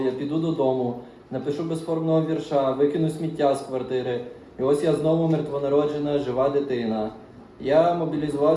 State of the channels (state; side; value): identical; both; correlation 1.00